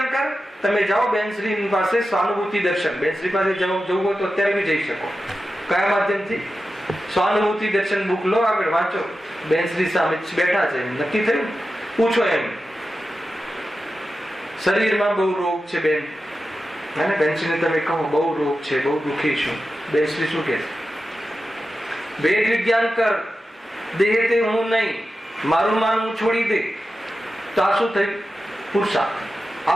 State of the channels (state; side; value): normal; both; correlation 0.92